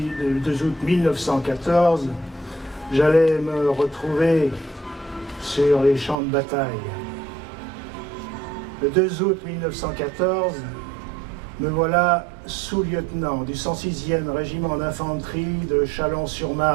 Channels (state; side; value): drops out; left; at 6.2 s